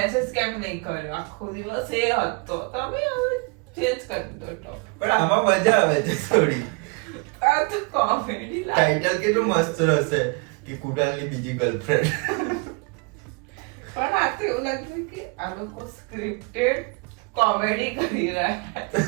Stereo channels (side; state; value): left; quieter; 31.9 dB